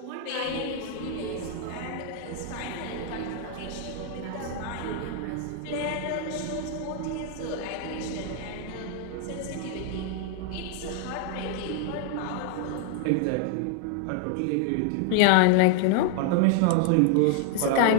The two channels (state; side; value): different; both; correlation 0.00